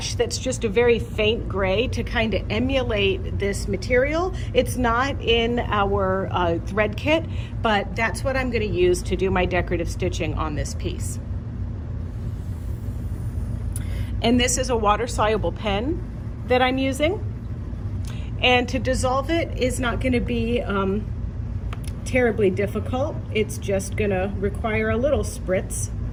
that's just a very faint gray to kind of emulate this material. It's not in our thread kit, but that's what I'm going to use to do my decorative stitching on this piece. And this is a water-soluble pen that I'm using. And to dissolve it is not going to be terribly difficult. It's just gonna require a little spritz.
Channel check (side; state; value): both; identical; correlation 1.00